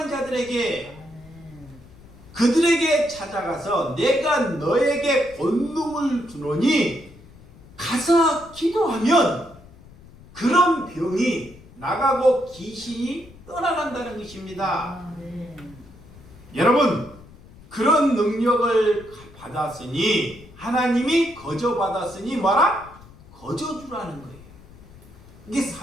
자들에게 아멘. 그들에게 찾아가서 내가 너에게 권능을 주노니 가서 기도하면 그런 병이 나가고 귀신이 떠나간다는 것입니다. 아멘. 여러분, 그런 능력을 받았으니 하나님이 거저 받았으니 뭐라? 거저 주라는 거예요. 이게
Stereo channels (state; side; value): noise; left; rumble, 22 dB below the sound